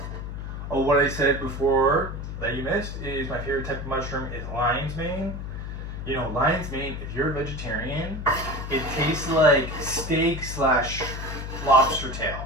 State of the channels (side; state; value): left; noise; hum, 7 dB below the sound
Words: Oh, what I said before that you missed is my favorite type of mushroom is lion's mane. Lion's mane, if you're a vegetarian, it tastes like steak / lobster tail.